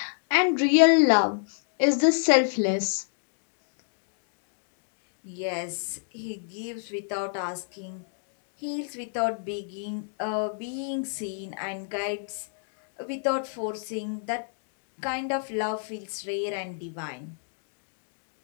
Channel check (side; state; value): right; silent; digital silence